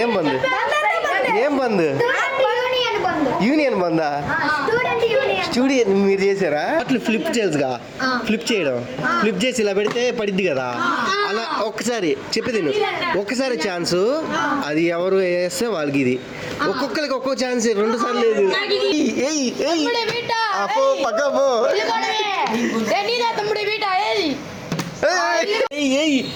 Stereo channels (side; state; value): both; identical; correlation 1.00